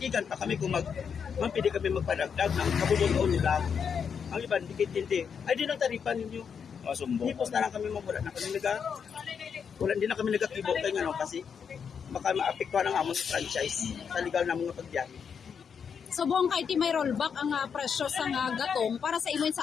pa kami kung pwede kami magpadagdag ng kabubuton nila. Ang iba, hindi kitindi. Ay, di nang taripan ninyo. Hipos na lang kami wala na kami hindi na kami nagatibo kayo nga kasi baka maapektuhan ang amon sa franchise sa legal na mga pagbiyahe. So buong kay ti may rollback ang presyo sa nga gatong para sa imo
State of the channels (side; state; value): right; quieter; 6.8 dB